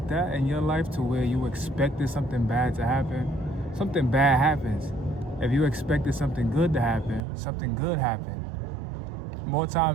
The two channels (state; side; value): drops out; left; at 7.2 s